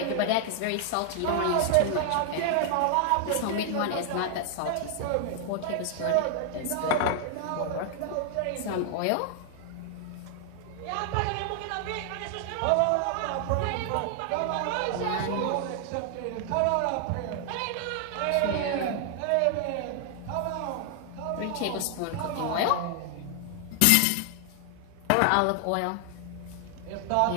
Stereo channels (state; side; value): different; both; correlation 0.00